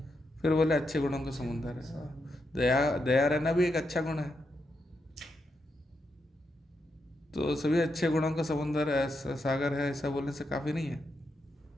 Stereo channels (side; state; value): both; normal; correlation 0.83